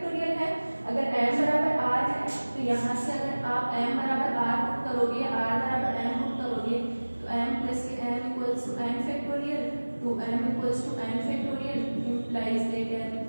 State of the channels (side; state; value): both; inverted; correlation -1.00